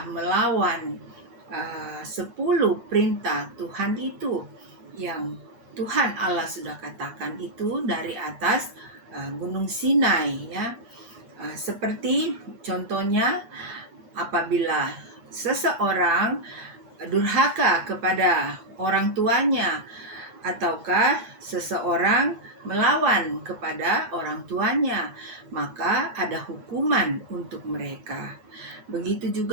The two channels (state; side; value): late; left; 9.4 ms